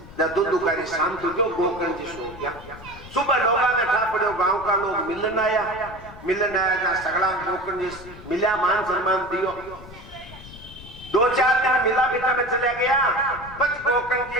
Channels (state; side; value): noise; left; rumble, 17 dB below the sound